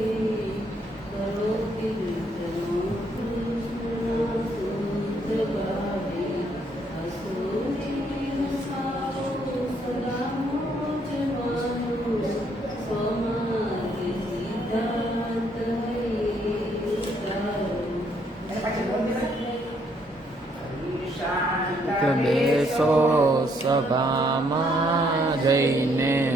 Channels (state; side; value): normal; both; correlation 0.70